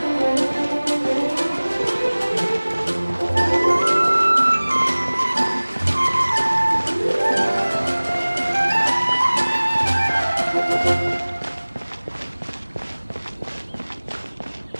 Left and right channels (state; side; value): inverted; both; correlation -1.00